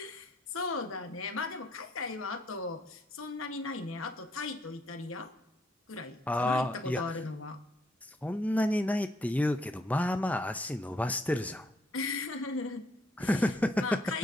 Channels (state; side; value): normal; both; correlation 0.70